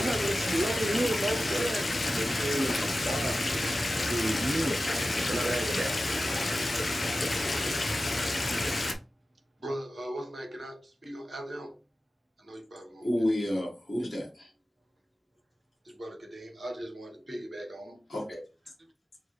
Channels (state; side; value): normal; both; correlation 0.94